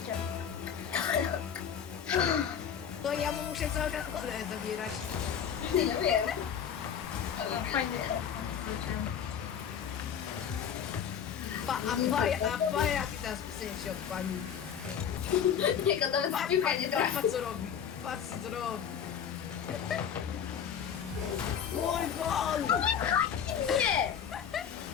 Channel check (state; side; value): quieter; right; 8.1 dB